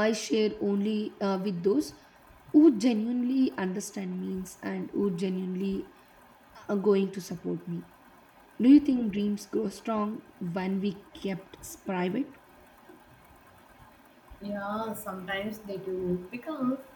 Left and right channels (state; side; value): identical; both; correlation 1.00